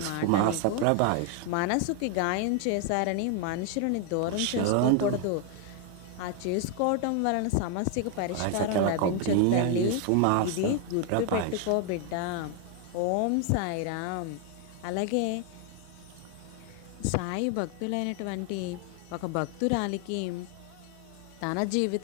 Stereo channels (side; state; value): both; different; correlation 0.01